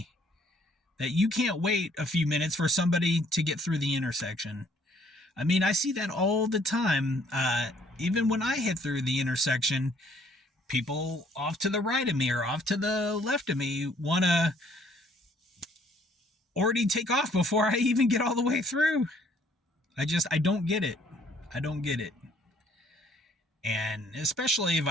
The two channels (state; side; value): normal; both; correlation 0.62